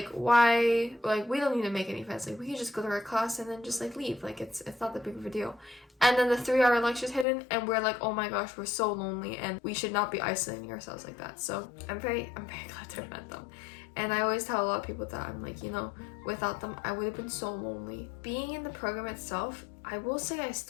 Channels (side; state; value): right; drops out; at 7.2 s